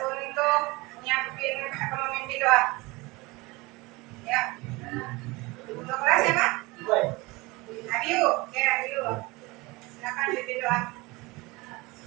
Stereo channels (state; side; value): quieter; left; 23.4 dB